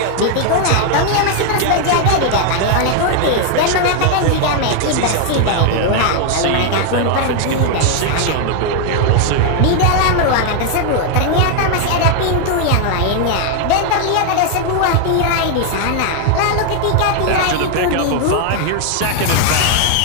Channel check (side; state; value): both; different; correlation 0.00